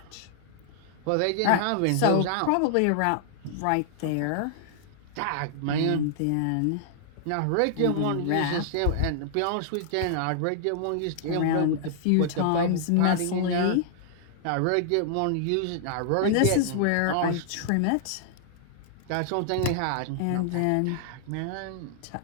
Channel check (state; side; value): different; both; correlation -0.01